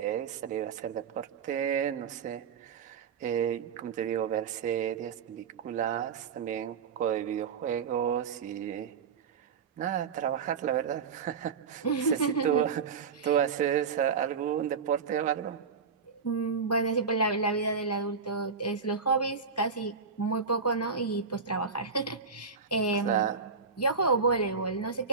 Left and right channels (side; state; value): left; quieter; 5.6 dB